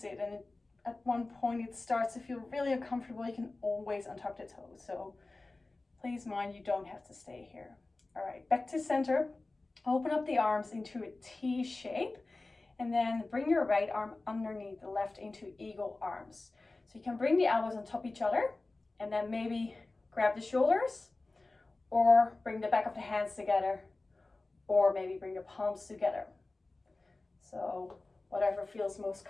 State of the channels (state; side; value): quieter; right; 3.2 dB